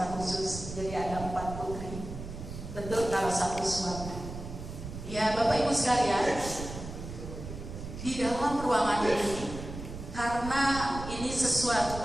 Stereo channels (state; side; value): noise; right; rumble, 9 dB below the sound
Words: khusus, jadi ada 4 putri. Betul kalau 1 suami. Ya Bapak Ibu sekalian, di dalam ruangan ini, karena ini